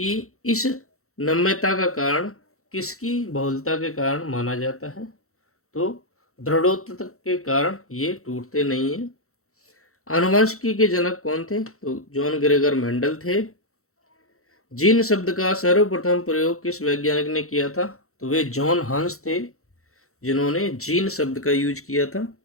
इस नम्यता का कारण किसकी बहुलता के कारण माना जाता है? तो दृढ़ोत्तता के कारण ये टूटते नहीं हैं। आनुवंशिकी के जनक कौन थे? तो जॉन ग्रेगर मेंडल थे। जीन शब्द का सर्वप्रथम प्रयोग किस वैज्ञानिक ने किया था? तो वे जॉन हंस थे जिन्होंने जीन शब्द का यूज किया था।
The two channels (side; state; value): right; late; 0.63 ms